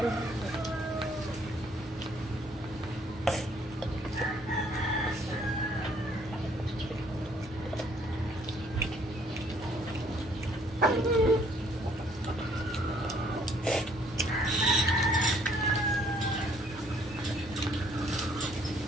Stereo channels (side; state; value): both; normal; correlation 0.63